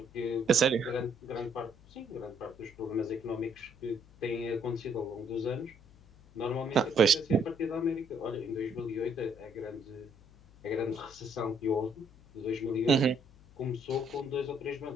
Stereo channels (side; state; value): left; noise; hum, 24 dB below the sound